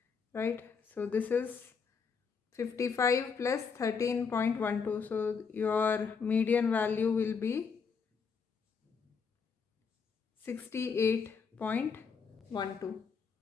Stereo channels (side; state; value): right; quieter; 5.7 dB